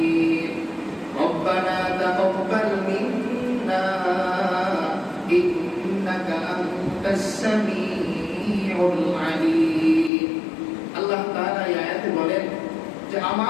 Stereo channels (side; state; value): right; drops out; at 10.1 s